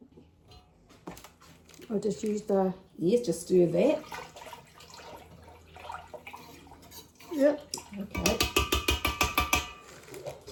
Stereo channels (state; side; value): identical; both; correlation 1.00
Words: I'll just use the... Yes, just stir that. Yep. Okay.